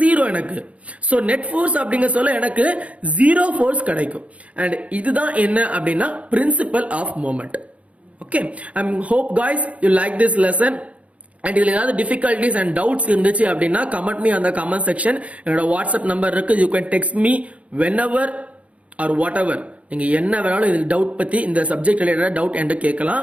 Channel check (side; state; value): left; late; 0.065 ms